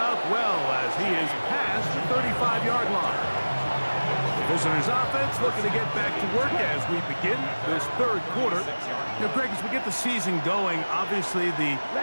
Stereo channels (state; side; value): inverted; both; correlation -1.00